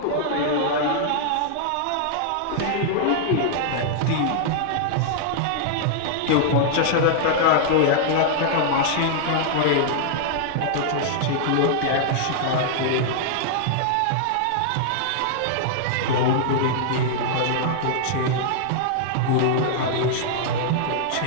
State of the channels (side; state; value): both; different; correlation -0.01